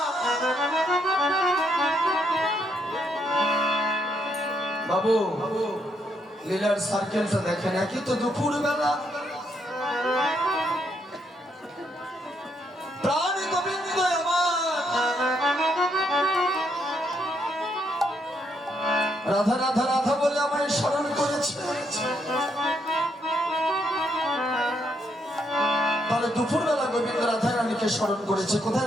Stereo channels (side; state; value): both; normal; correlation 0.75